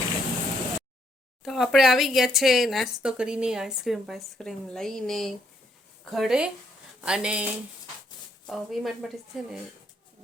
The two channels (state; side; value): normal; both; correlation 0.71